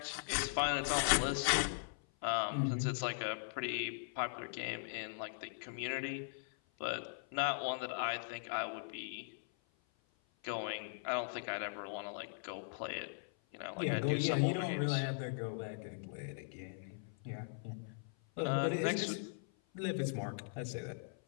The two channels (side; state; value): right; silent; 51 dB below the other